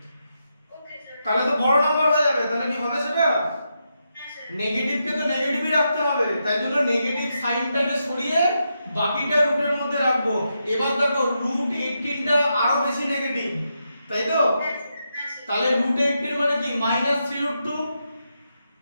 ওকে স্যার। তাহলে তো বড় নাম্বার হয়ে যাবে, তাহলে কি হবে সেটা, হ্যাঁ স্যার। নেগেটিভকে তো নেগেটিভই রাখতে হবে, তাই জন্য নেগেটিভ সাইনটাকে সরিয়ে বাকিটা রুটের মধ্যে রাখবো। এবার দেখো রুট 18টা আরো বেশি নেগেটিভ, তাই তো? হ্যাঁ স্যার। হ্যাঁ স্যার। তাহলে রুট 18 মানে কি মাইনাস 3 রুট 2,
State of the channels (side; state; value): both; inverted; correlation -0.84